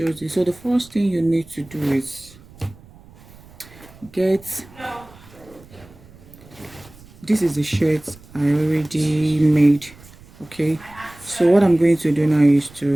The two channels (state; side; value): noise; right; rumble, 23 dB below the sound